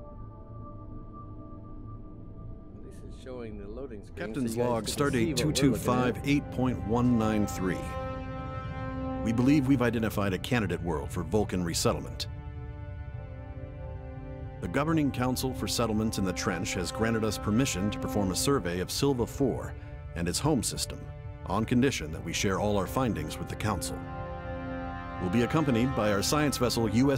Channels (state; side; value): identical; both; correlation 1.00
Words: This is showing the loading screen. Captain's log, stardate 225-8.193. We believe we've identified a candidate world for Vulcan resettlement. The Governing Council for Settlements in the Trench has granted us permission to perform a survey of Silva 4 and its home system, on condition that we share all our findings with the Council. We'll be accompanied by our science vessel